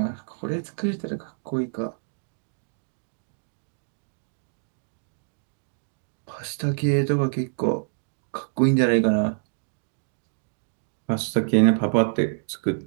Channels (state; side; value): silent; left; digital silence